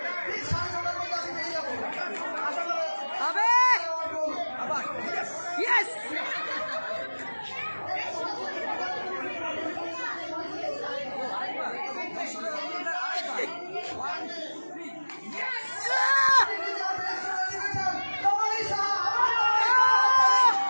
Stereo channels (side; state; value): both; inverted; correlation -1.00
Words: ঠিক 6:30 মধ্যে আমি পেয়ে যাবো। আশা করা যাচ্ছে। আবে আবার ইয়েস।